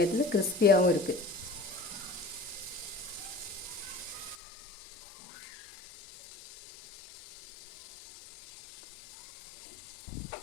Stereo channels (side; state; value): right; drops out; at 4.4 s